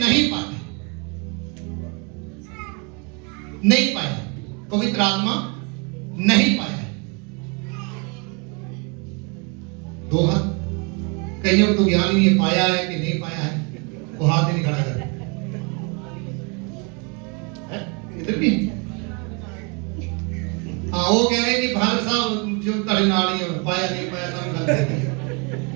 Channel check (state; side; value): quieter; left; 33.0 dB